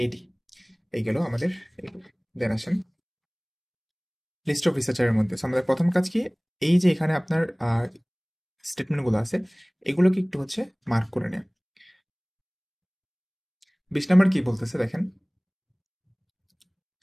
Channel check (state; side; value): identical; both; correlation 1.00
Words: এডি, এই গেল আমাদের এইগুলো। দেন আসেন লিস্ট অফ রিসার্চারের মধ্যে। So আমাদের প্রথম কাজ কি, এই যে এখানে আপনার স্টেটমেন্টগুলো আছে এগুলোকে একটু হচ্ছে মার্ক করে নেয়। 20 নাম্বার কি বলতেছে দেখেন,